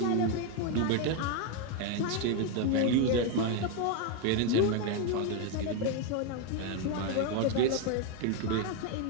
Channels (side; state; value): both; different; correlation 0.02